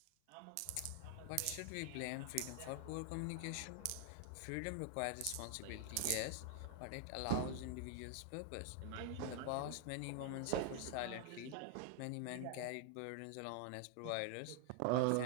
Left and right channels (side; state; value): both; different; correlation 0.00